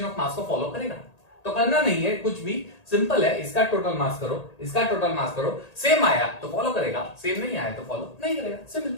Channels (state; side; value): late; right; 1.8 ms